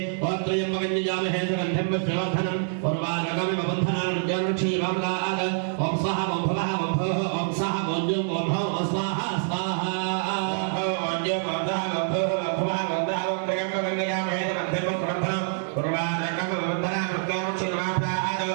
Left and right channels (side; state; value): left; silent; digital silence